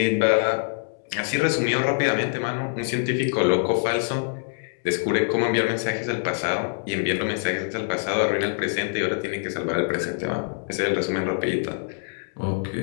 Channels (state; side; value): silent; right; 62 dB below the other